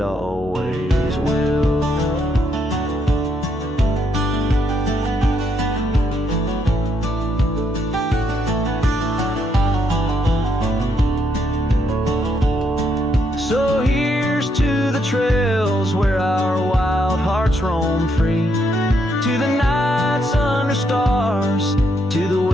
always will. So here's to the trails where our wild hearts roam free, to the nights under stars, to the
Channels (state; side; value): normal; both; correlation 0.75